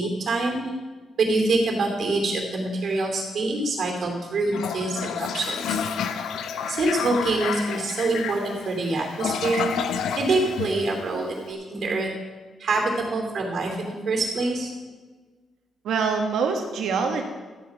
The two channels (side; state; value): both; normal; correlation 0.76